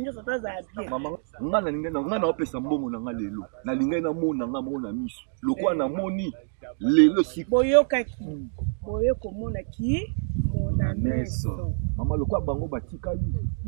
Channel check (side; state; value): left; silent; digital silence